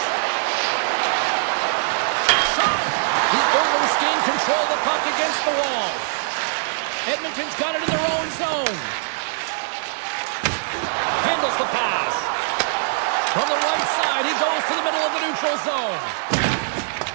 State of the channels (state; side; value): silent; left; 64 dB below the other